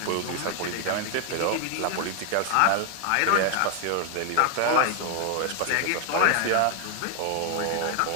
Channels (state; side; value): different; both; correlation 0.00